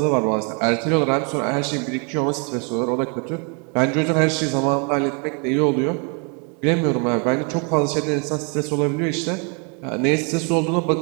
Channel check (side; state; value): left; quieter; 36.5 dB